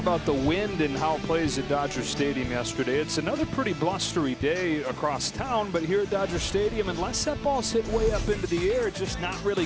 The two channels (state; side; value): identical; both; correlation 1.00